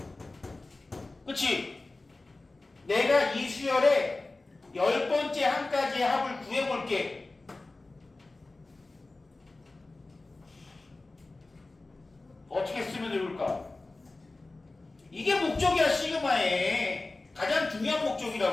그치? 내가 이 수열의 10번째 항까지의 합을 구해볼게. 어떻게 쓰면 좋을까? 이게 목적이야. 시그마의 가장 중요한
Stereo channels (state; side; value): quieter; right; 3.2 dB